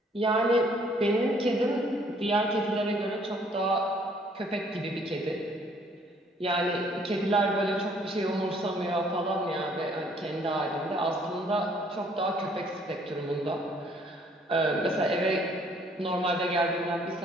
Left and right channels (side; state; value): both; normal; correlation 0.62